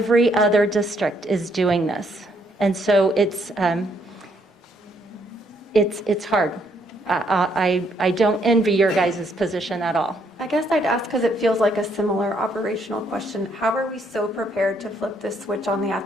other district is doing this, and so it's hard. I don't envy your guys' position at all. I guess I'd ask, because it feels like a similar operational question, how are we so prepared to flip this switch on the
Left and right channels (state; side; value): normal; both; correlation 0.71